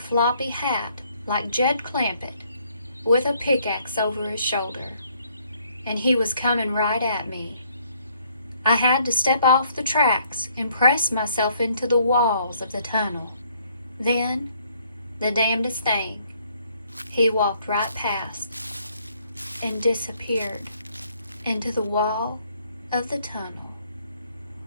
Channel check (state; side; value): inverted; both; correlation -0.66